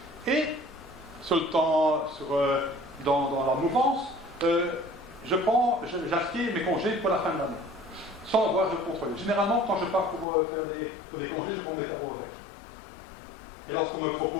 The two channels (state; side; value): drops out; right; at 10.2 s